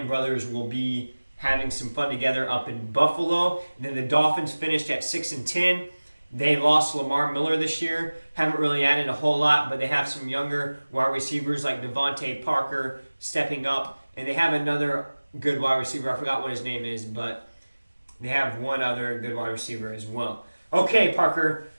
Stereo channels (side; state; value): both; inverted; correlation -1.00